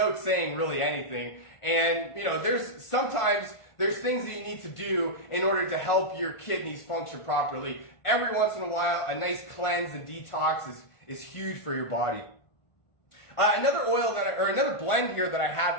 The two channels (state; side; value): late; right; 1.5 ms